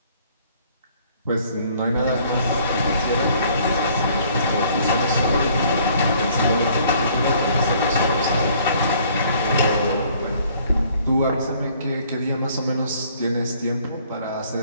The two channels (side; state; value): both; inverted; correlation -0.60